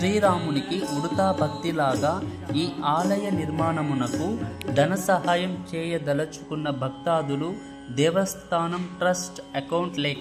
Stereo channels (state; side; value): identical; both; correlation 1.00